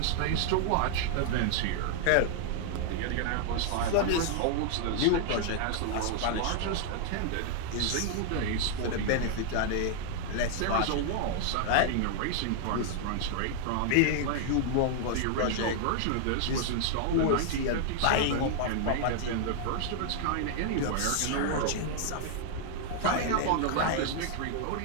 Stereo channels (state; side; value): different; both; correlation -0.01